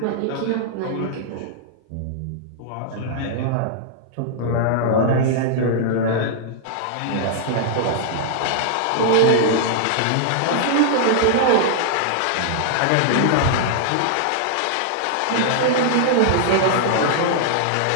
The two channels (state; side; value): different; both; correlation -0.01